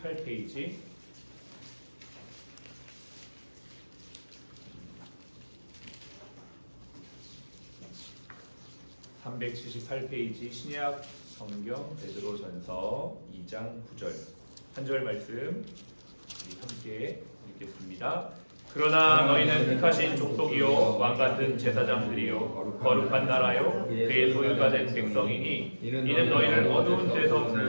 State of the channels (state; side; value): inverted; both; correlation -1.00